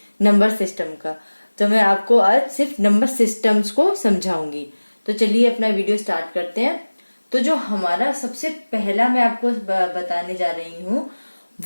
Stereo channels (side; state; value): both; inverted; correlation -1.00